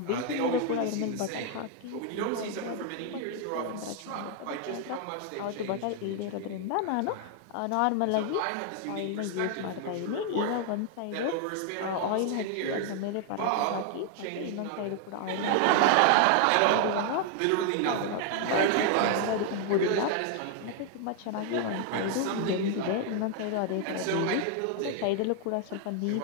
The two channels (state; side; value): different; both; correlation 0.00